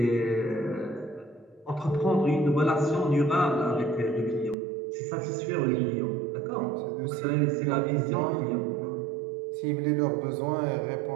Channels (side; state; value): left; drops out; at 4.5 s